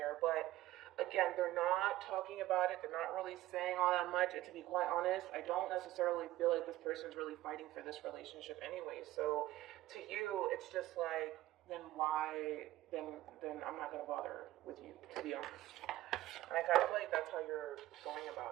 But again, they're not talking about it. They're not really saying all that much. And to be quite honest, I don't necessarily feel like this person's really fighting for this relationship anyway. So to you, it's just like, then why, then I'm not going to bother with you, to be honest. And I kind of feel like that's how you're going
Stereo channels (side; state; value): left; quieter; 15.8 dB